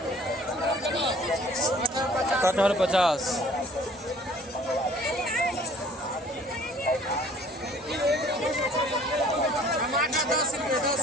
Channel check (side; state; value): both; normal; correlation 0.54